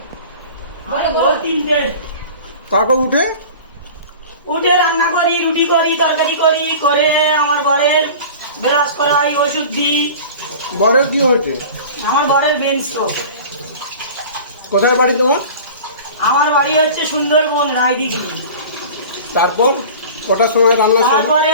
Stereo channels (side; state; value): both; inverted; correlation -0.38